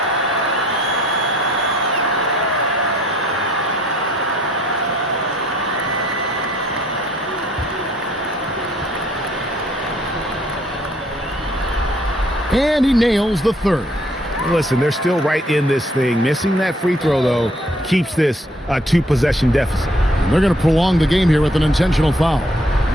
And he nails the third. Listen, they're still right in this thing. Missing that free throw, though, keeps this a 2-possession deficit. And they're going to prolong the game here with an intentional foul.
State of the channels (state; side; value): normal; both; correlation 0.63